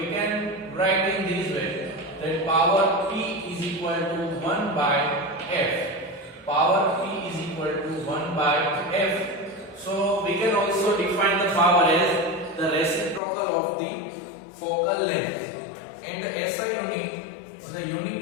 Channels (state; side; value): drops out; right; at 13.2 s